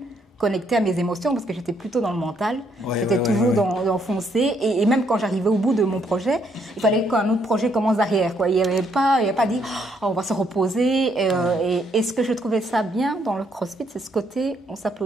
connectée à mes émotions, parce que j'étais plutôt dans le mental. J'étais toujours dans foncer. Et même quand j'arrivais au bout de mon projet, il fallait qu'un autre projet commence derrière, quoi. Il n'y avait pas dit, oh, on va se reposer. Et ce que je trouvais ça bien dans le CrossFit, c'est ce côté, on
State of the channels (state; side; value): normal; both; correlation 0.72